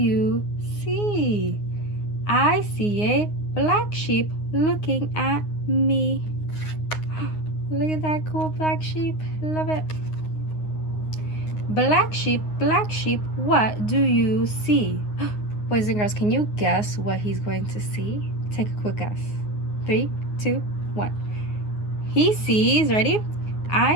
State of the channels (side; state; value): right; late; 9.6 ms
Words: see? I see a black sheep looking at me. Look at that cool black sheep. Love it. Black sheep, what do you see? Boys and girls, can you guess what he's going to see? Take a quick guess. 3, 2, 1. He sees, ready?